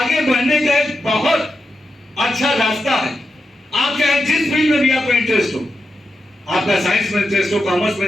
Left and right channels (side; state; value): both; normal; correlation 0.88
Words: बढ़ने का एक बहुत अच्छा रास्ता है। आप चाहे जिस फील्ड में भी आपका इंटरेस्ट हो, आपका साइंस में इंटरेस्ट हो, कॉमर्स में